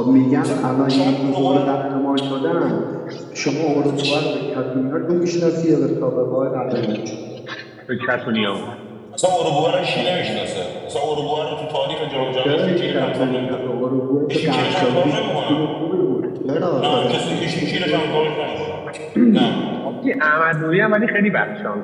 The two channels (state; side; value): identical; both; correlation 1.00